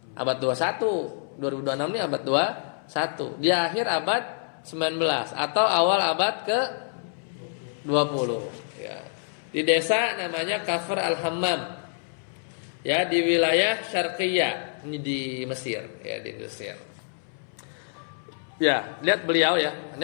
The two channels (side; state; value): right; silent; 60 dB below the other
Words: Abad 21. 2026 ini abad 21. Di akhir abad 19 atau awal abad ke 20 ya. Di desa namanya Kafr Al-Hammam. Ya, di wilayah Syarqiyah, ini di Mesir, ya di Mesir. Ya, lihat beliau ya. Ini